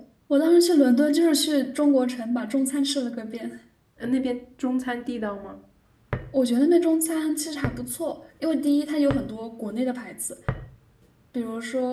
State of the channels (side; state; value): both; identical; correlation 1.00